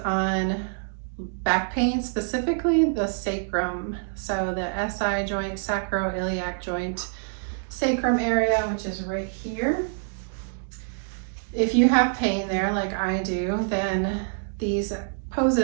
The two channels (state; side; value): silent; left; digital silence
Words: back pain, specifically the sacrum. So the SI joint, sacroiliac joint, sacrum area, which is right here. If you have pain there like I do, then these